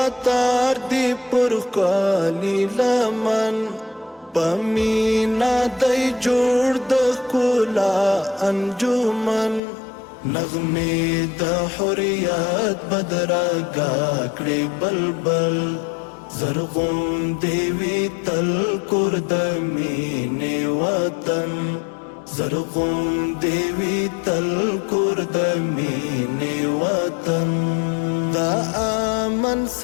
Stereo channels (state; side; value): drops out; right; at 9.6 s